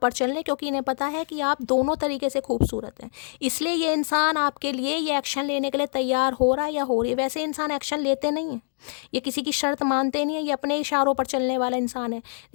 चलने, क्योंकि इन्हें पता है कि आप दोनों तरीके से खूबसूरत हैं। इसलिए ये इंसान आपके लिए ये एक्शन लेने के लिए तैयार हो रहा है या हो रही है। वैसे इंसान एक्शन लेते नहीं हैं, ये किसी की शर्त मानते नहीं है, ये अपने इशारों पर चलने वाला इंसान है।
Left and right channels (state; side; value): silent; right; 62 dB below the other